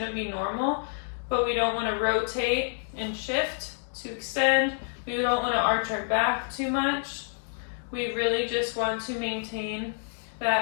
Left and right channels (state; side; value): silent; right; 59 dB below the other